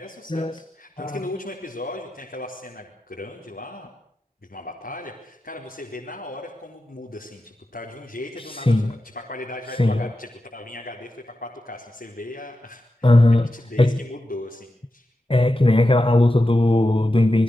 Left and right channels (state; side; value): normal; both; correlation 0.90